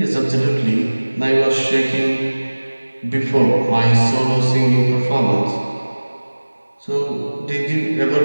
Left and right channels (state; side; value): inverted; both; correlation -1.00